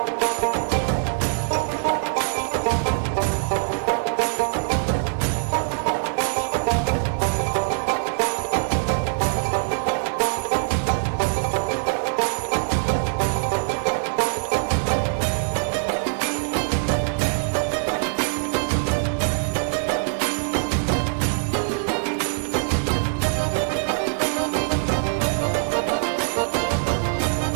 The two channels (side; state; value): left; silent; 57 dB below the other